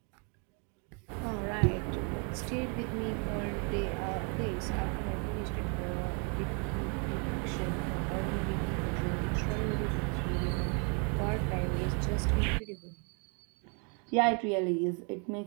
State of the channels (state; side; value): quieter; left; 36.4 dB